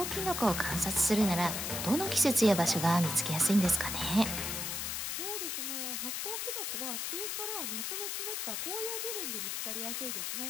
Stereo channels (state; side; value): noise; left; hiss, 2 dB below the sound